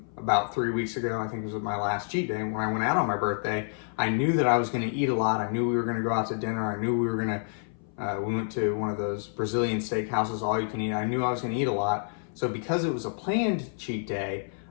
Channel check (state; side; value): silent; right; 59 dB below the other